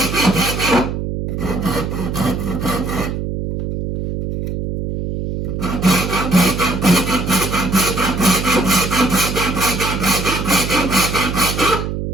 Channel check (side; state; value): right; noise; hum, 4 dB below the sound